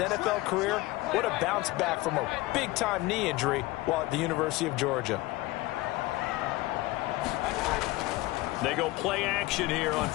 NFL career. What a bounce back from a big-time knee injury while at the University of Georgia. They go play action here on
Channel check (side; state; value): right; quieter; 19.3 dB